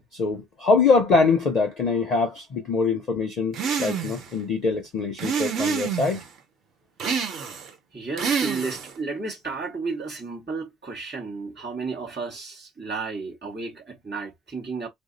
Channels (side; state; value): both; normal; correlation 0.53